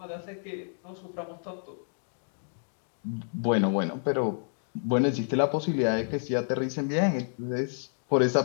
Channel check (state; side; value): silent; right; digital silence